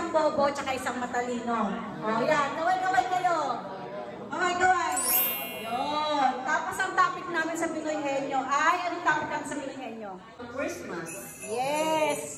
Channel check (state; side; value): identical; both; correlation 1.00